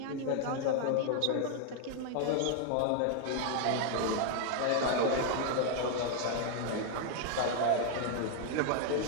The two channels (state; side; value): different; both; correlation 0.00